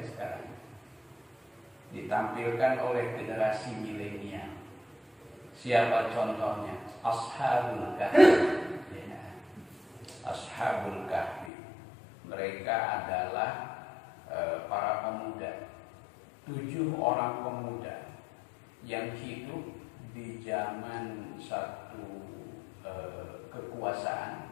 sekarang ditampilkan oleh generasi milenial. Siapa contohnya? Ashabul Kahfi ya. Ashabul Kahfi, mereka adalah para pemuda, 7 orang pemuda yang hidup di zaman satu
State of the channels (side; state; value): right; drops out; at 11.5 s